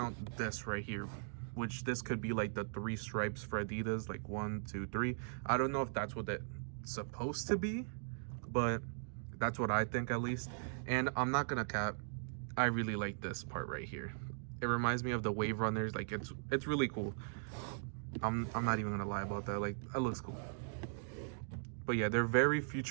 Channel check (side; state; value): left; silent; digital silence